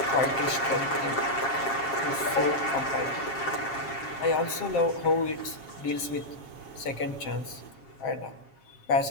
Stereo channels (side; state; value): right; late; 7.6 ms